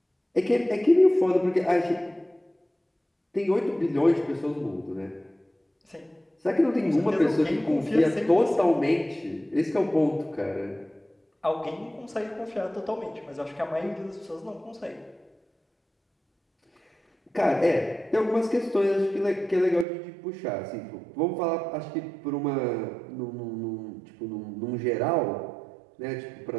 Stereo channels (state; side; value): drops out; left; at 19.9 s